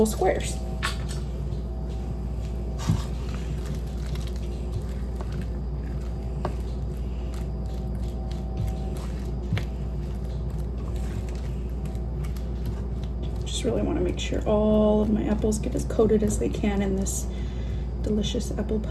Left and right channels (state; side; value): identical; both; correlation 1.00